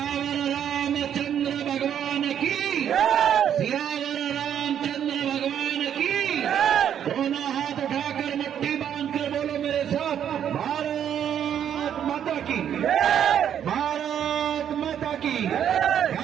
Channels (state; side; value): quieter; left; 9.3 dB